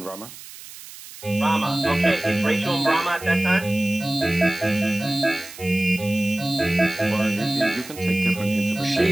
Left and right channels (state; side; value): noise; right; hiss, 16 dB below the sound